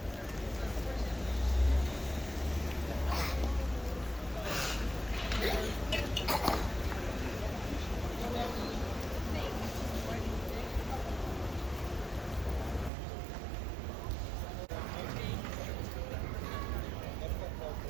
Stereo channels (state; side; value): drops out; left; at 12.9 s